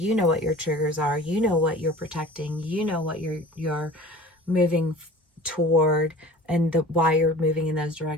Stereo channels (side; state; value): both; normal; correlation 0.41